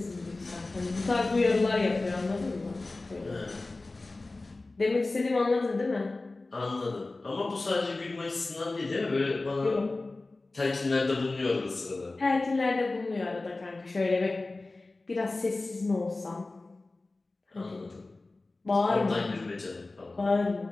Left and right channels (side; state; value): right; quieter; 3.2 dB